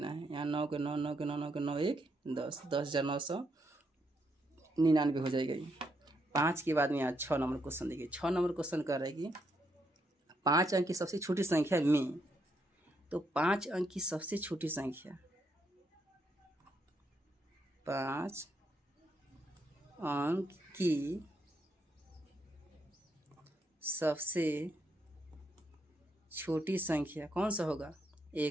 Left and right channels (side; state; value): both; normal; correlation 0.78